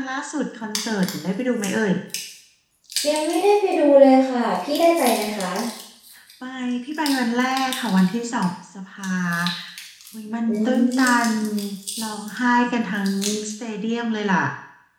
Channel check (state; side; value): identical; both; correlation 1.00